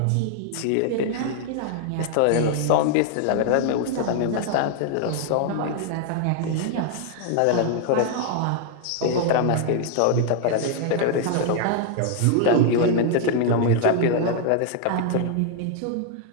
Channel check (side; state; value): both; different; correlation 0.00